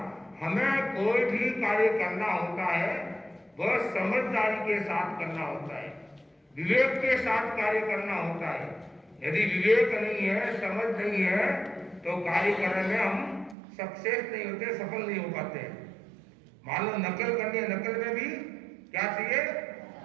हमें कोई भी कार्य करना होता है वह समझदारी के साथ करना होता है, विवेक के साथ कार्य करना होता है। यदि विवेक नहीं है, समझ नहीं है, तो कार्य करने में हम सक्सेस नहीं होते, सफल नहीं हो पाते। मान लो नकल करनी है, नकल में भी क्या चाहिए?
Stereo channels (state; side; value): drops out; left; at 13.6 s